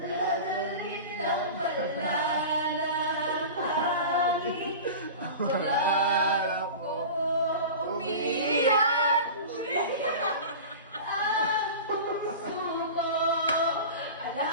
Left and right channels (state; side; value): inverted; both; correlation -0.33